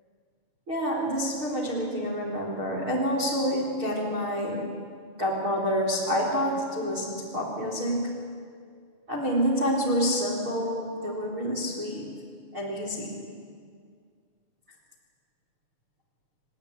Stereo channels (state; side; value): late; left; 6.5 ms